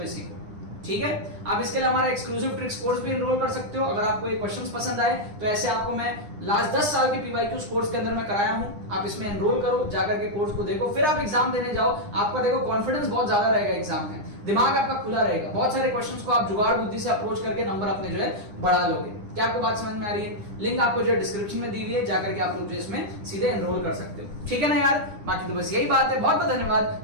सीखो, ठीक है। आप इसके लिए हमारा एक्सक्लूसिव ट्रिक्स कोर्स भी एनरोल कर सकते हो। अगर आपको ये क्वेश्चंस पसंद आए तो ऐसे आपको मैं लास्ट 10 साल के PYQ कोर्स के अंदर में कराया हूं, आप इसमें एनरोल करो, जाकर के कोर्स को देखो, फिर आप एग्जाम देने जाओ। आपका देखो कॉन्फिडेंस बहुत ज्यादा रहेगा एग्जाम में, दिमाग आपका खुला रहेगा, बहुत सारे क्वेश्चंस को आप जुगाड़ बुद्धि से अप्रोच करके नंबर अपने जो है बढ़ा लोगे। क्या आपको बात समझ में आ रही है? लिंक आपको जो है डिस्क्रिप्शन में दी हुई है, जाकर के आप लोग जो इसमें सीधे एनरोल कर सकते हो, ठीक है ना यार। बाकी तो बस यही बात है, बहुत बहुत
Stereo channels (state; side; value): late; left; 9.9 ms